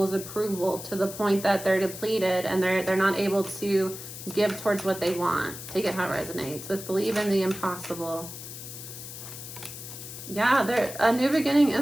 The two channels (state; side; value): noise; left; hiss, 11 dB below the sound